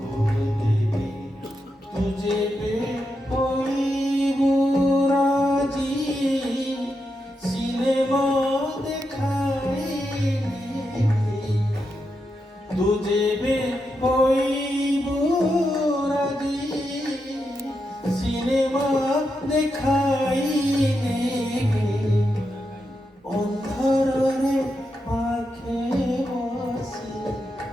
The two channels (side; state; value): both; normal; correlation 0.85